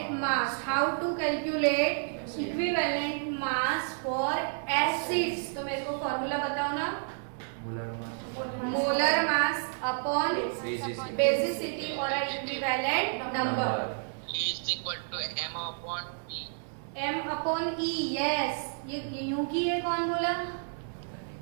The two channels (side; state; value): left; silent; digital silence